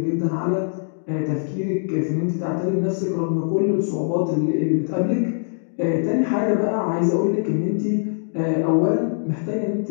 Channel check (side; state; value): right; silent; digital silence